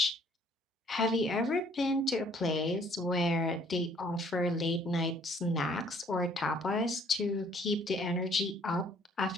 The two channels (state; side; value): normal; both; correlation 0.60